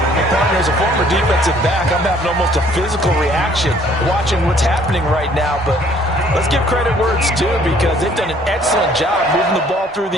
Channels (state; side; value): normal; both; correlation 0.59